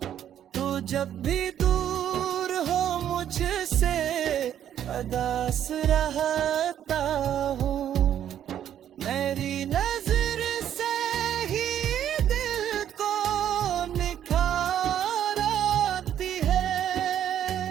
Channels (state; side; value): quieter; left; 10.3 dB